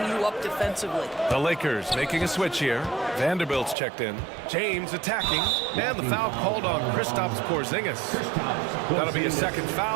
you up defensively. The Lakers making a switch here. Vanderbilt's checked in. James attacking. And the foul called on Kristaps Porzingis. That'll be a second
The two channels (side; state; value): left; drops out; at 3.8 s